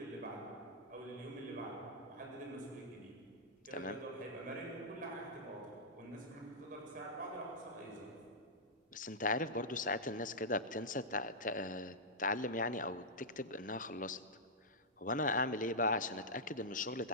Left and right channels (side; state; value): both; normal; correlation -0.11